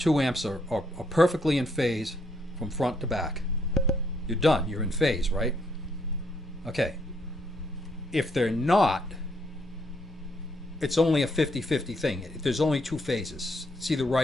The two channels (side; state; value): both; normal; correlation 0.73